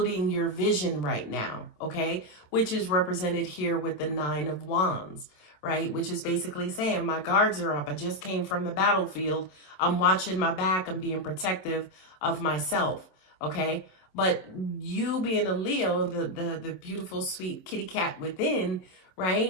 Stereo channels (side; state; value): right; late; 27 ms